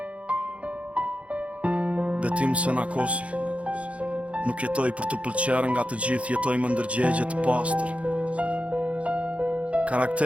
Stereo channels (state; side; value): late; left; 0.063 ms